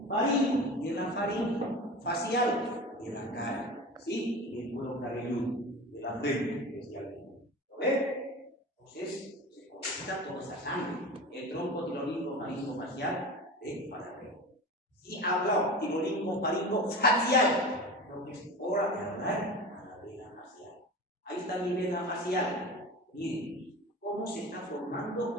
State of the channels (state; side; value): normal; both; correlation 0.32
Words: Faringo, de la faringe. Facial, de la cara. ¿Sí? Y el cuero cabelludo, de la frente, especialmente. ¿Lo ve? Entonces, se conecta toda esa sangre. El tronco tirolingo faringo facial de Farapeo. Y habla tirolingo faringo facial. Creo que es hora de hablar a la vena facial. Ahí está mi vena facial. Miren, cómo se está